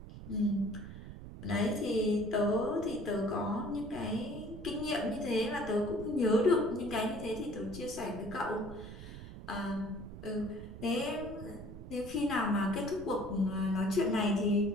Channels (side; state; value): right; noise; rumble, 12 dB below the sound